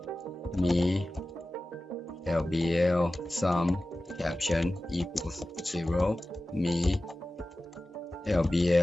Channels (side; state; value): both; normal; correlation 0.95